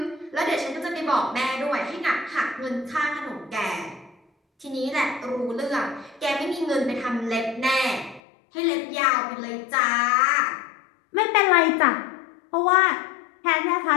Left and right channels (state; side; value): drops out; right; at 8.2 s